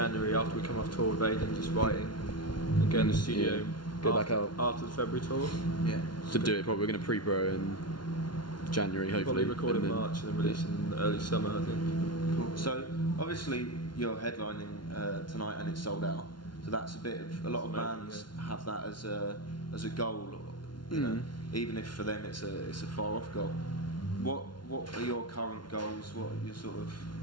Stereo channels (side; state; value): right; late; 0.71 ms